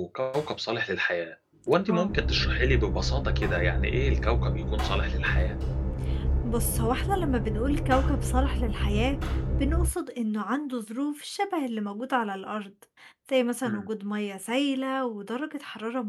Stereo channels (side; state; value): both; identical; correlation 1.00